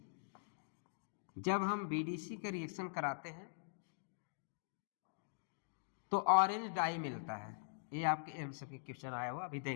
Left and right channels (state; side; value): silent; right; digital silence